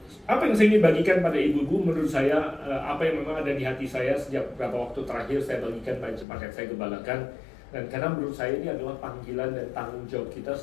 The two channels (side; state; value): right; drops out; at 6.2 s